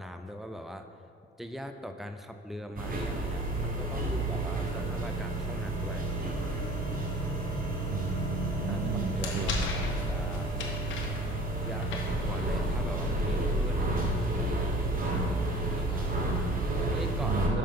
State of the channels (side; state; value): both; normal; correlation 0.45